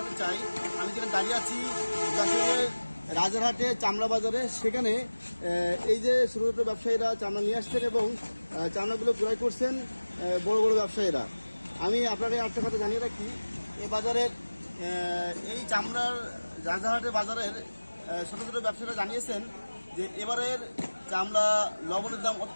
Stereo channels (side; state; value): both; inverted; correlation -1.00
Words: চাই, আমি যেখানে দাঁড়িয়ে আছি যশোরের রাজারহাটে চামড়া বাজারে। সেখানে এই যে ছোট ছোট ব্যবসায়ীরা চামড়া নিয়ে আসছেন এবং চামড়াগুলো ক্রয় করছেন বড় বড় ব্যবসায়ীরা। আমি আপনাকে একটা কথা জানিয়ে রাখি, এই বাজারের এই চামড়ার রাজারহাটের বাজারের ছোট ছোট ব্যবসায়ীরা জানিয়েছেন যে এবারের চামড়া লবণের দাম